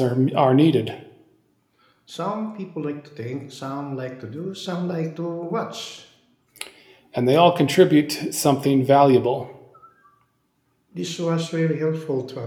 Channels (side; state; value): both; identical; correlation 1.00